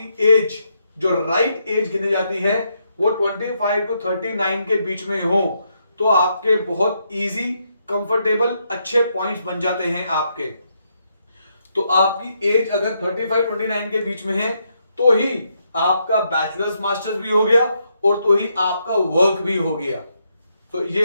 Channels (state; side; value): inverted; both; correlation -0.78